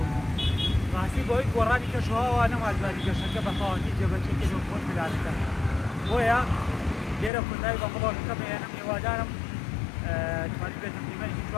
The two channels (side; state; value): right; drops out; at 7.3 s